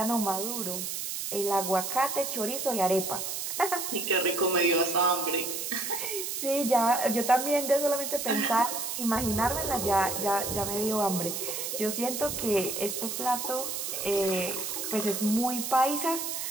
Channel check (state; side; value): noise; right; hiss, 4 dB below the sound